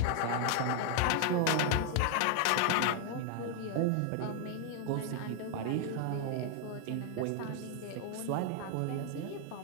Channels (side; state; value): both; different; correlation 0.00